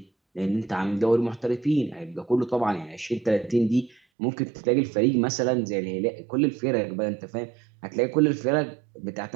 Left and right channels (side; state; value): left; drops out; at 4.0 s